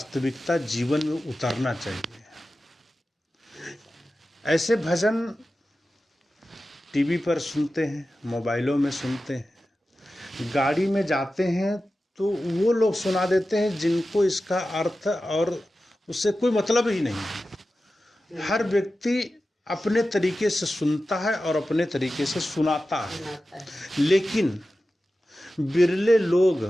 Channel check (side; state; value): both; normal; correlation 0.94